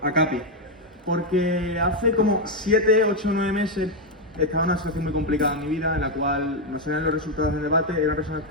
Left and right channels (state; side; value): normal; both; correlation 0.03